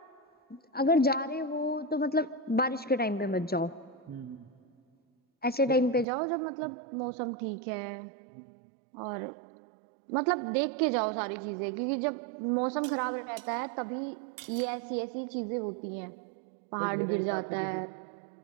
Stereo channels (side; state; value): left; drops out; at 6.1 s